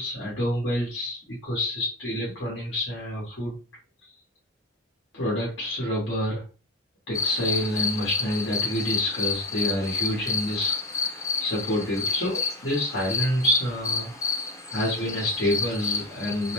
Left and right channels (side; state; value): both; normal; correlation 0.23